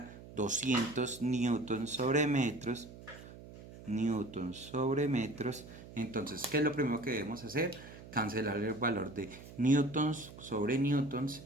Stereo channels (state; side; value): noise; right; hum, 16 dB below the sound